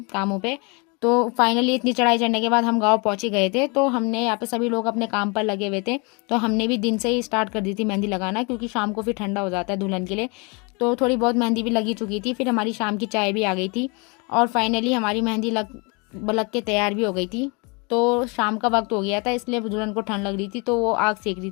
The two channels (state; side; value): quieter; right; 30.9 dB